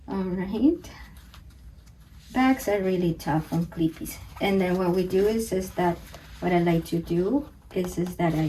All right, bags are really tough on clippies. And then what we do is that what I like to do is that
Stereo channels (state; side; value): identical; both; correlation 1.00